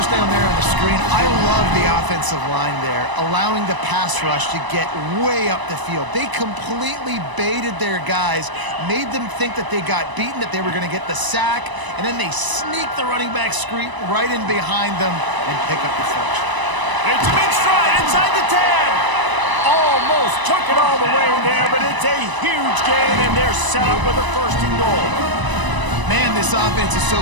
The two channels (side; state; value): left; late; 1.0 ms